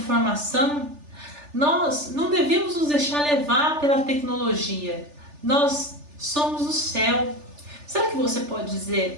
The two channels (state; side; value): late; left; 3.4 ms